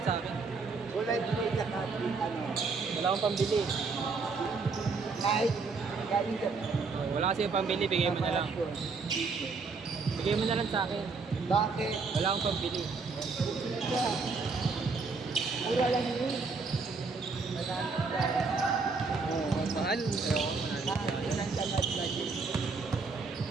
sa akin. Kulay blue saka pink, ano. Wala akong pambili. Kahit galing Japan. Wala kasi yung pambili, bigay mo na lang. Bigay mo na lang sa akin. Bakit? Wala akong pambili. Mura lang yun. Maraming dahil. Oo, mahal. Ayoko, mahal. Isang tamad na din.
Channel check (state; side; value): quieter; left; 4.5 dB